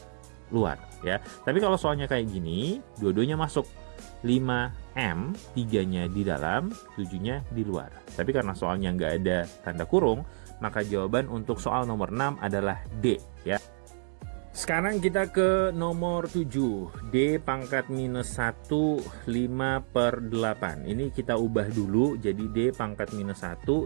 luar ya. Tapi kalau soalnya kayak gini, dua-duanya masuk. 5M, 3-nya di dalam, 7-nya di luar. Tapi karena soalnya nggak ada tanda kurung, maka jawaban untuk soal nomor 6 adalah D ya. Sekarang kita ke nomor 7. D pangkat minus 1, 5 per 8. Ini kita ubah dulu jadi D pangkat minus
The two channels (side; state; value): left; silent; digital silence